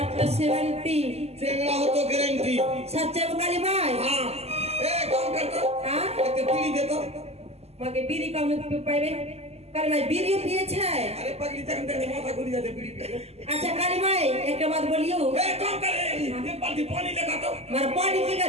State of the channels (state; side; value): late; left; 0.30 ms